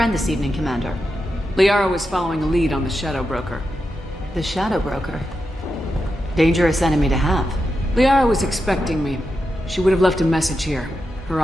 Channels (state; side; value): normal; both; correlation 0.88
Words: this evening, Commander. Liara was following a lead on the Shadow Broker. The Shadow Broker? Dangerous enemy to have. Liara was expecting me. She would have left a message here. Her